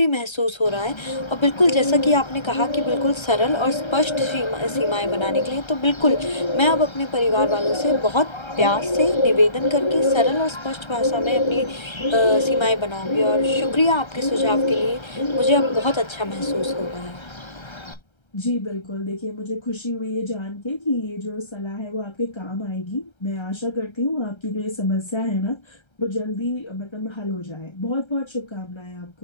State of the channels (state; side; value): late; right; 1.3 ms